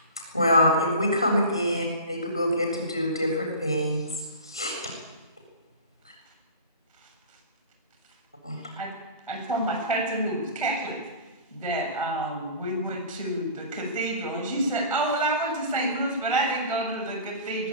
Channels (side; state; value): both; inverted; correlation -0.37